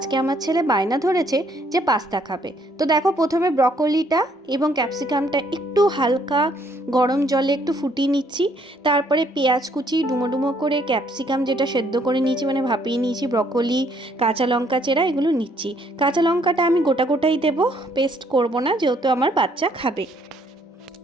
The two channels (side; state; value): both; normal; correlation 0.67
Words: আমার ছেলে বায়না ধরেছে যে পাস্তা খাবে। তো দেখো, প্রথমে ব্রকলিটা এবং ক্যাপসিকামটা একটু হালকা গরম জলে একটু ফুটিয়ে নিচ্ছি। তারপরে পেঁয়াজ কুচি ডুমো ডুমো করে, ক্যাপসিকাম যেটা সেদ্ধ করে নিয়েছি মানে ভাপিয়ে নিয়েছি, ব্রকলি, কাঁচা লঙ্কা চেরা এগুলো নিচ্ছি। কাঁচা লঙ্কাটা আমি গোটা গোটাই দেবো, পেস্ট করব না, যেহেতু আমার বাচ্চা খাবে।